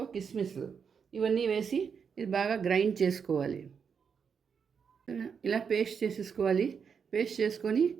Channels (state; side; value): quieter; left; 6.5 dB